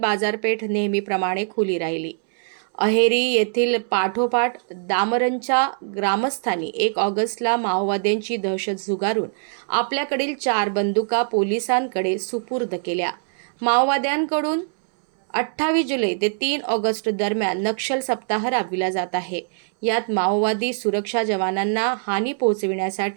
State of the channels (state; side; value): silent; left; 64 dB below the other